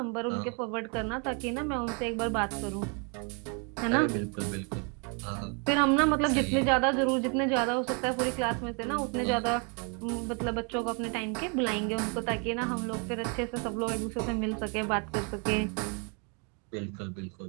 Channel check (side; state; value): left; quieter; 36.3 dB